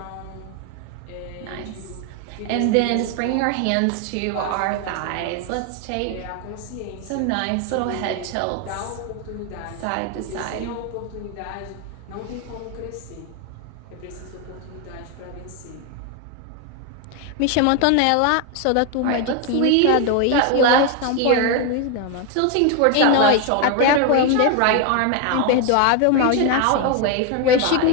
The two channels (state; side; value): different; both; correlation 0.01